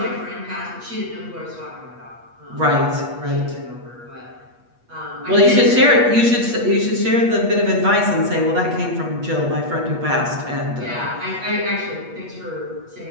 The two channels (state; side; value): late; left; 8.3 ms